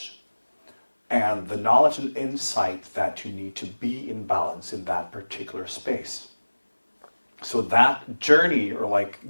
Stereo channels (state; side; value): inverted; both; correlation -1.00